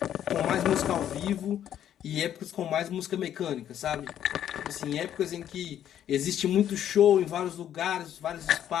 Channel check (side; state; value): right; quieter; 10.5 dB